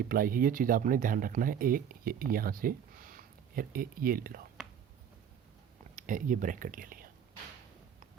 है, ये चीज़ आपने ध्यान रखना है। ये यहाँ से ये ले लो, ये ब्रैकेट ले लिया,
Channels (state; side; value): quieter; left; 8.4 dB